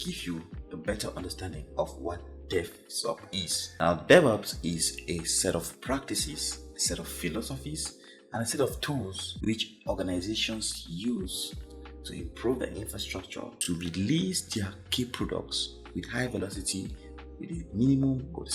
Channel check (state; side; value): identical; both; correlation 1.00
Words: you a better understanding of what DevOps is. Now, DevOps is a set of practices, a set of philosophies, and a set of tools which organizations use to improve their infrastructure to release their key products with high velocity with the minimum or the